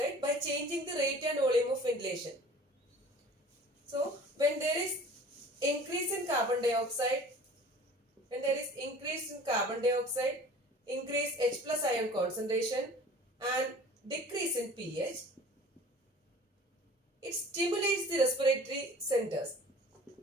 by changing the rate and volume of ventilation. So, when there is increase in carbon dioxide, increase H plus ion concentration and decrease in pH, it stimulates the respiratory centers.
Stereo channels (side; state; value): both; normal; correlation 0.45